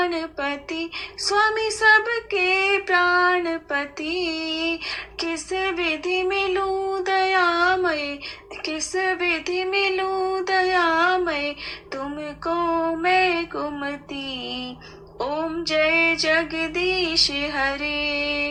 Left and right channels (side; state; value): both; identical; correlation 1.00